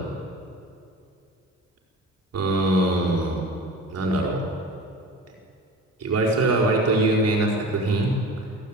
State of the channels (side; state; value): both; normal; correlation 0.37